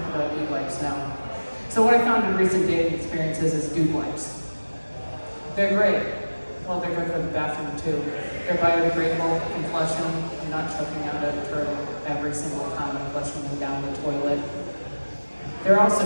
about dude wipes now. So what I found in recent dating experiences is dude wipes. They're great. Well, they're good for the bathroom too. They're biodegradable, you can flush them. I'm not choking out a turtle every single time I'm flushing them down the toilet. They're also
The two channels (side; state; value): both; inverted; correlation -1.00